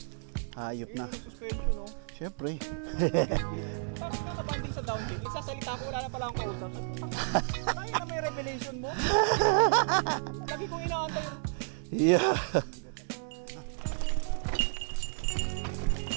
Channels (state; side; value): silent; left; 57 dB below the other